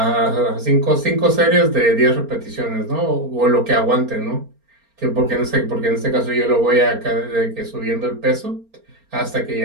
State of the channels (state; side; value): late; left; 4.3 ms